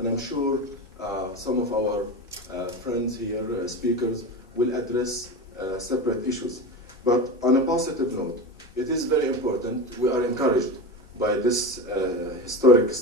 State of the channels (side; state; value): both; normal; correlation 0.24